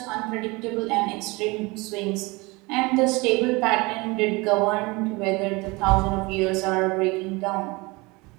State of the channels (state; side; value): quieter; left; 24.7 dB